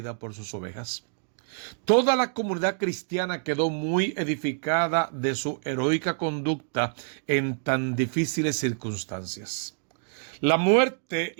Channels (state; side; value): silent; left; digital silence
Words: por sus ovejas. Toda la comunidad cristiana quedó muy edificada de su heroica conducta en tan difíciles circunstancias. La muerte